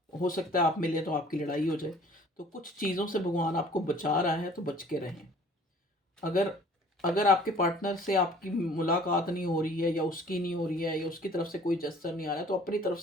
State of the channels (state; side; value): normal; both; correlation 0.52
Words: हो सकता है आप मिले तो आपकी लड़ाई हो जाए, तो कुछ चीज़ों से भगवान आपको बचा रहा है, तो बच के रहें। अगर अगर आपके पार्टनर से आपकी मुलाकात नहीं हो रही है, या उसकी नहीं हो रही है, या उसकी तरफ से कोई जेस्चर नहीं आ रहा है, तो अपनी तरफ